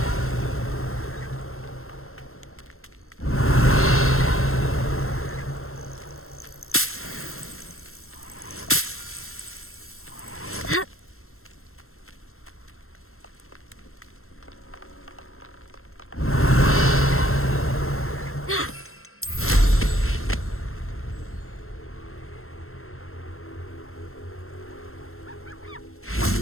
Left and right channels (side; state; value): right; late; 0.62 ms